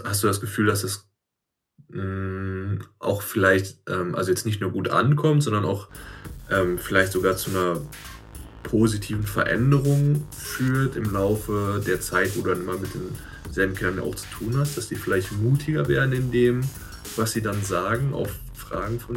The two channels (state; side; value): identical; both; correlation 1.00